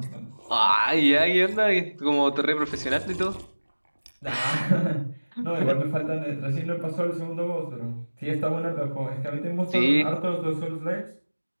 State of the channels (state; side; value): inverted; both; correlation -1.00